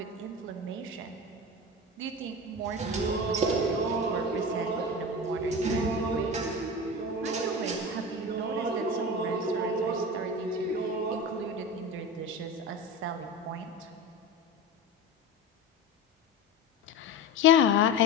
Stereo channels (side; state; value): both; normal; correlation 0.27